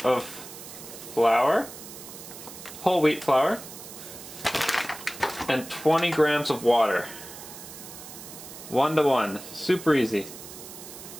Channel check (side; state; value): right; noise; hiss, 14 dB below the sound